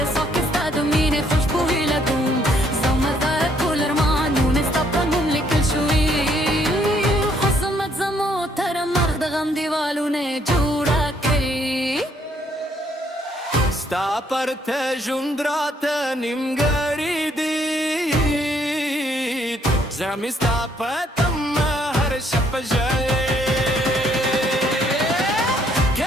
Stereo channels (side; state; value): both; normal; correlation 0.68